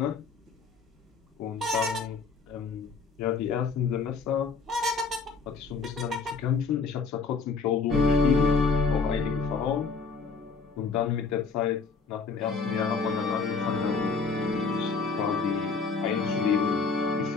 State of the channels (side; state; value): right; quieter; 4.8 dB